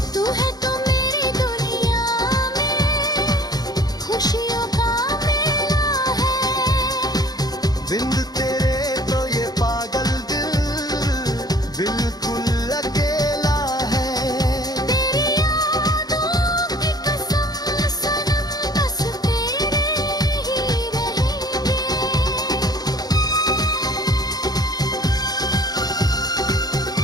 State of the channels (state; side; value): late; right; 0.19 ms